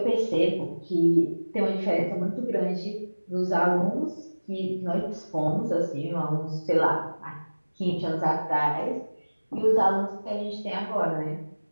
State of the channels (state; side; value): inverted; both; correlation -1.00